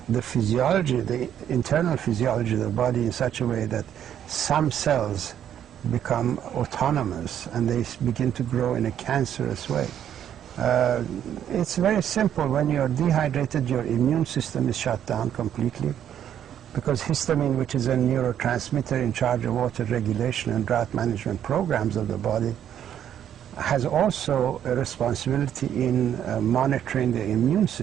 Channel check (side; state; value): left; quieter; 10.0 dB